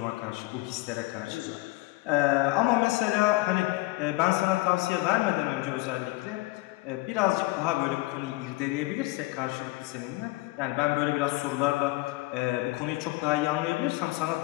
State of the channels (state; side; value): quieter; right; 21.0 dB